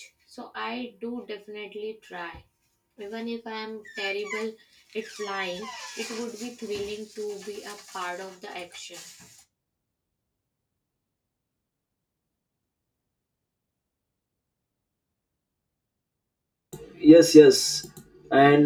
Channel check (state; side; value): identical; both; correlation 1.00